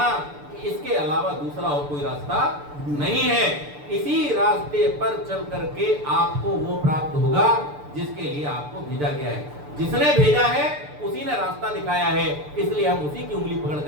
कि इसके अलावा दूसरा और कोई रास्ता नहीं है। इसी रास्ते पर चल करके आपको वो प्राप्त होगा जिसके लिए आपको भेजा गया है। जिसने भेजा है उसी ने रास्ता दिखाया है, इसलिए हम उसी की उंगली पकड़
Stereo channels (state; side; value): late; left; 6.8 ms